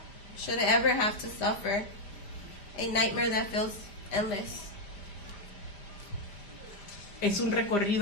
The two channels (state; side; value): late; right; 5.0 ms